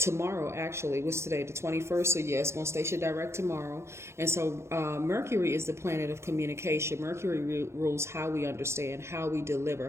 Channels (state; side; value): late; left; 0.13 ms